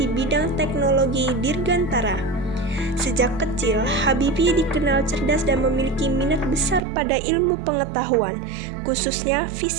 bidang teknologi dirgantara. Sejak kecil, Habibie dikenal cerdas dan memiliki minat besar pada ilmu pengetahuan, khususnya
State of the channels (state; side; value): drops out; left; at 6.8 s